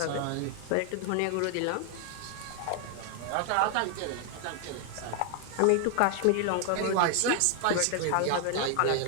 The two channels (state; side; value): different; both; correlation 0.00